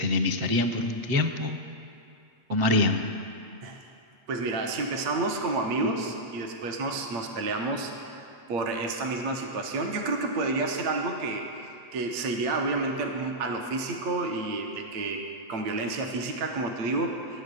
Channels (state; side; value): late; left; 8.7 ms